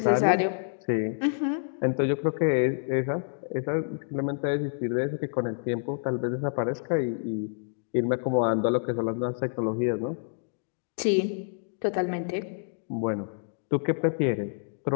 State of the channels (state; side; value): silent; right; digital silence